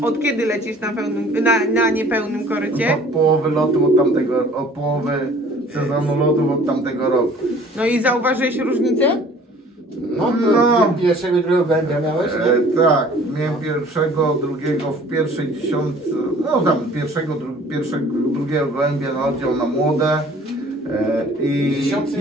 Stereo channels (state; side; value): normal; both; correlation 0.51